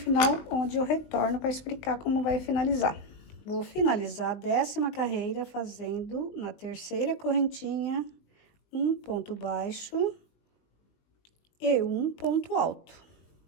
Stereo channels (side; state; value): right; late; 20 ms